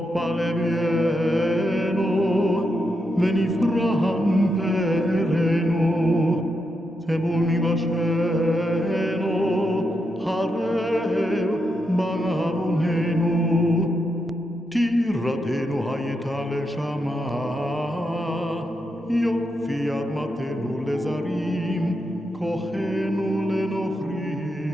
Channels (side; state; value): both; normal; correlation 0.84